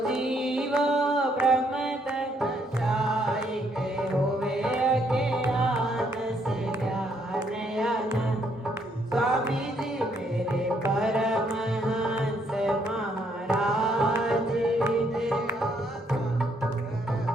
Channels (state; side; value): normal; both; correlation 0.71